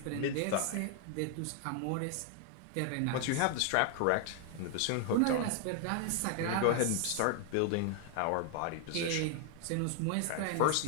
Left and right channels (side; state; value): both; different; correlation 0.00